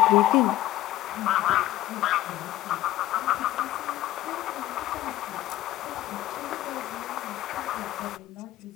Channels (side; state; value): right; quieter; 14.7 dB